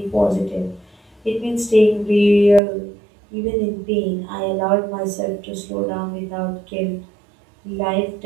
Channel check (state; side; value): drops out; left; at 2.6 s